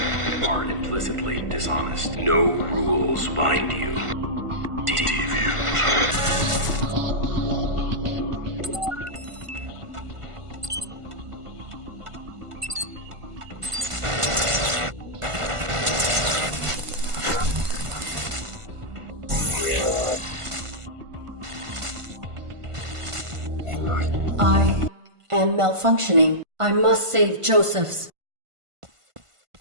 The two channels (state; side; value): late; left; 1.5 ms